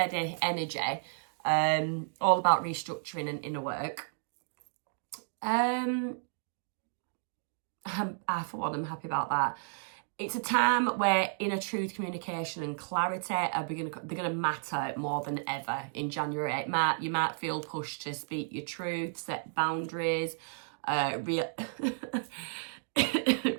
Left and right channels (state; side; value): silent; left; digital silence